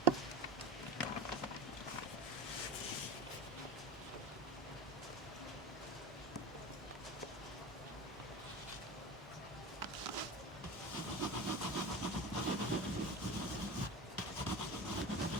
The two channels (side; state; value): both; normal; correlation 0.28